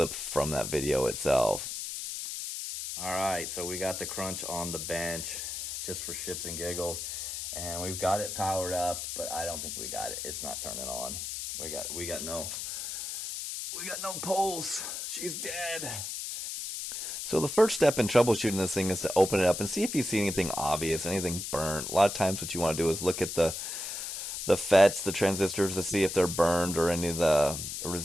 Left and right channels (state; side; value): noise; left; hiss, 5 dB below the sound